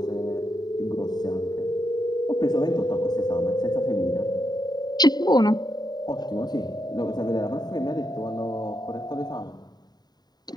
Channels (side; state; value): right; late; 0.20 ms